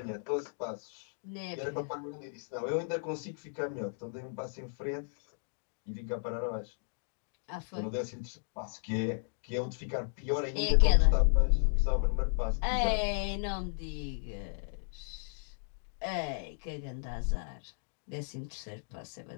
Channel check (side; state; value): right; silent; digital silence